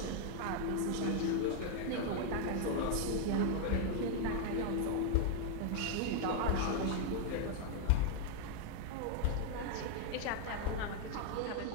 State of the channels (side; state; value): both; different; correlation 0.00